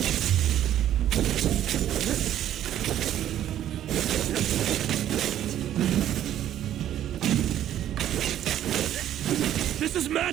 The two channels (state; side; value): quieter; left; 11.5 dB